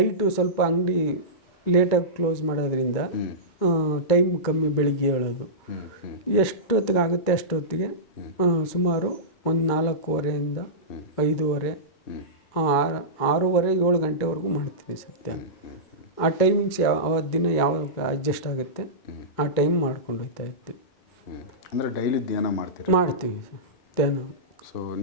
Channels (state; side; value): late; right; 2.3 ms